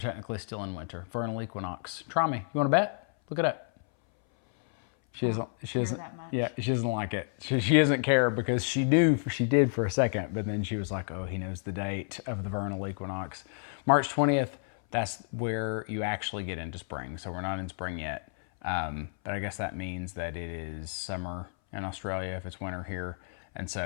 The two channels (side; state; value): right; silent; 57 dB below the other